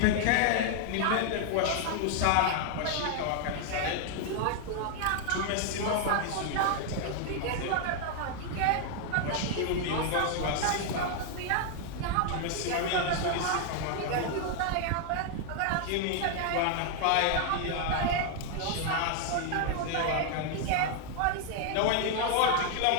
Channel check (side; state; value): both; different; correlation 0.00